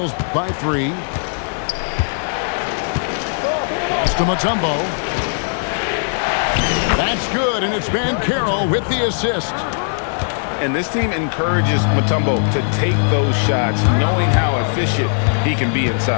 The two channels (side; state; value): right; silent; digital silence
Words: by 3. Pass to Mutombo. That's good, and it's Banchero with the assist. And this team encourages Mutombo to take those shots, knowing how efficient he can be